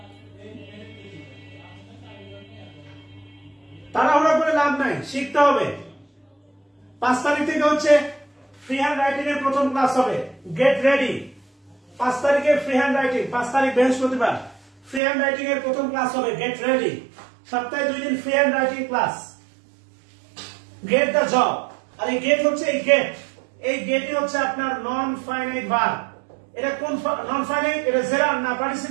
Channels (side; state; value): left; drops out; at 15.0 s